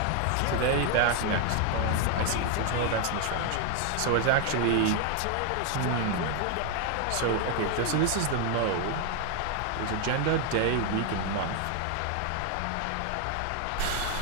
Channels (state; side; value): different; both; correlation 0.01